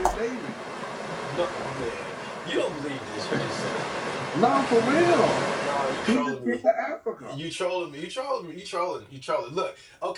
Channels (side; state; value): both; identical; correlation 1.00